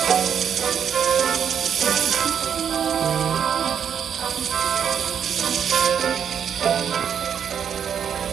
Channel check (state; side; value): quieter; left; 8.1 dB